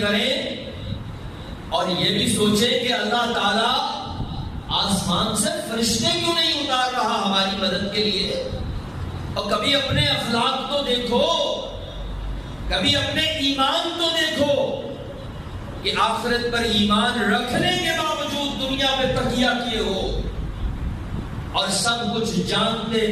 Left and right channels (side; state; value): both; identical; correlation 1.00